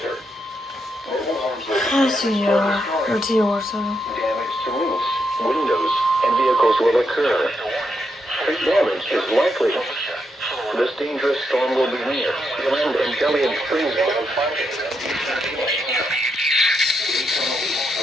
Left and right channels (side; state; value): both; normal; correlation 0.81